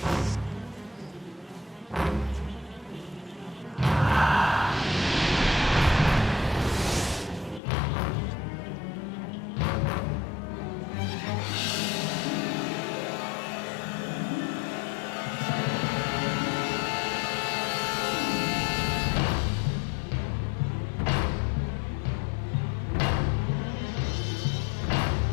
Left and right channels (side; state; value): right; drops out; at 7.6 s